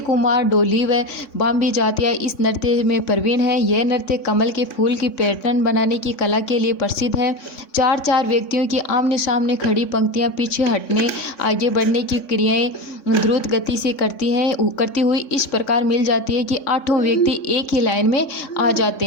कुमार, डोली व बाम्बी जातियाँ इस नृत्य में प्रवीण है। यह नृत्य कमल के फूल की पैटर्न बनाने की कला के लिए प्रसिद्ध है। चार चार व्यक्तियों की आमने सामने खड़ी पंक्तियाँ पीछे हटने, आगे बढ़ने की क्रियाएं द्रुत गति से करती हुई इस प्रकार मिल जाती है कि आठों व्यक्ति एक ही लाइन में आ जाते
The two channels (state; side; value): late; right; 3.6 ms